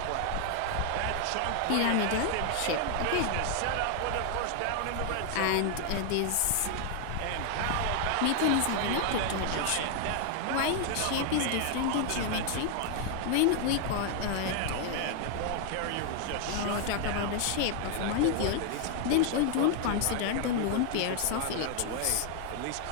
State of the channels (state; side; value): different; both; correlation 0.00